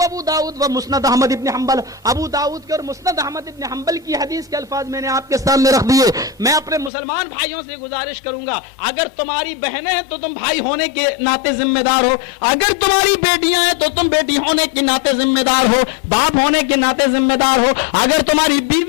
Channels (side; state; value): right; drops out; at 6.9 s